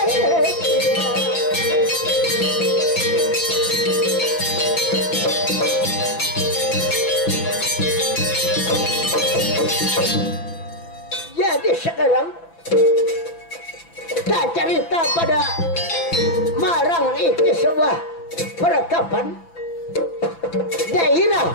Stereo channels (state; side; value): late; right; 6.0 ms